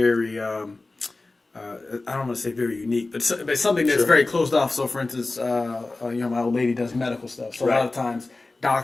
I don't want to say very unique, but something that's very closed off. So, for instance, my old lady does medical stuff. So a lot of times,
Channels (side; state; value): right; quieter; 3.3 dB